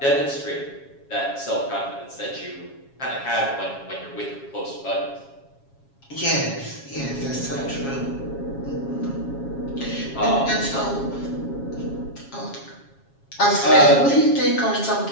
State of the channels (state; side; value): late; right; 7.3 ms